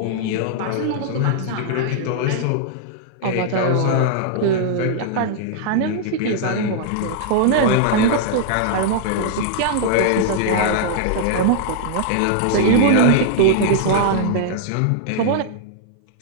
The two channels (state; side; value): different; both; correlation -0.01